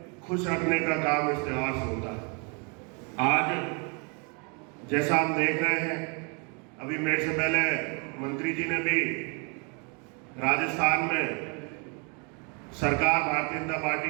खुश रखने का काम इस त्योहार से होता है। आज जैसा हम देख रहे हैं, अभी मेरे से पहले मंत्री जी ने भी राजस्थान में सरकार भारतीय जनता पार्टी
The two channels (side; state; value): left; quieter; 34.9 dB